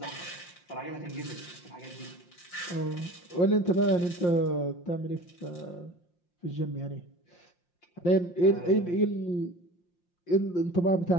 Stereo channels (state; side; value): late; right; 5.7 ms